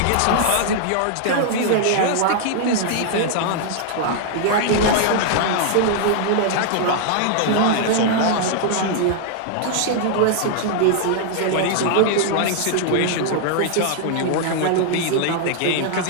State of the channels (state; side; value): different; both; correlation 0.00